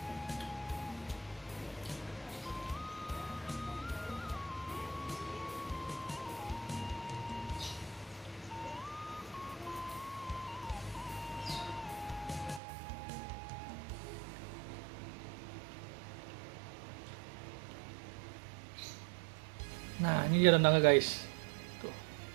Nah, ini dia rendangnya guys. Tuh.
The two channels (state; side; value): drops out; left; at 12.6 s